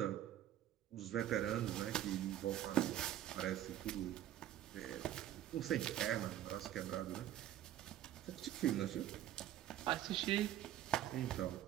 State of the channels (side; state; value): left; quieter; 12.3 dB